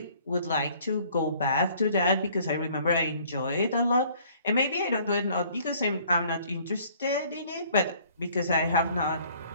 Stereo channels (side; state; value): both; inverted; correlation -0.58